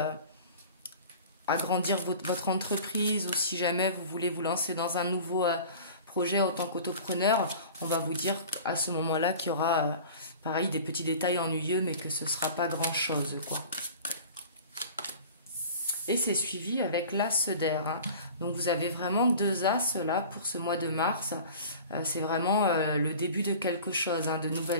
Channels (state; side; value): inverted; both; correlation -0.41